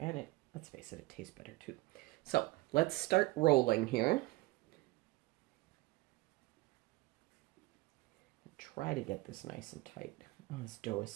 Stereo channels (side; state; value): left; quieter; 20.6 dB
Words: let's face it, it tastes better too. So let's start rolling here. Try to get this nice and tight. Oh, this dough is